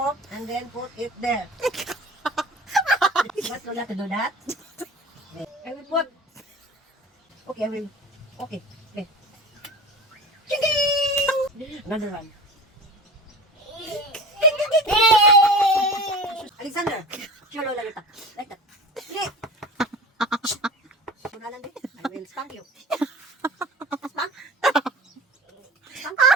and then put it there. What Lola to do that? I will put. Okay, I will. Okay. Okay. Ching-ding! Another one. Alexander, show Lola your tongue. Like that.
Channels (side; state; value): both; normal; correlation 0.35